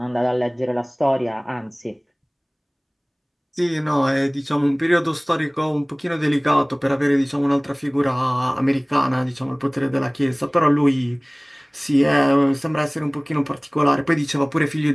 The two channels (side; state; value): both; identical; correlation 1.00